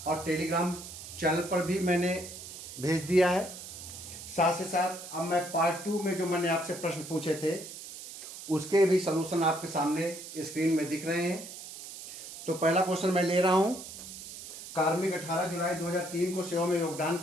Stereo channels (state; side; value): noise; right; hiss, 12 dB below the sound